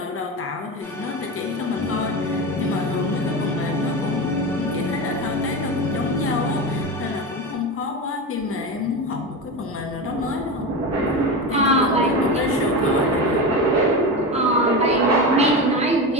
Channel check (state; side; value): normal; both; correlation 0.21